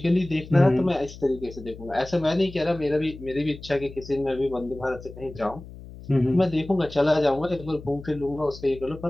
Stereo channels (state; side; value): noise; left; hum, 16 dB below the sound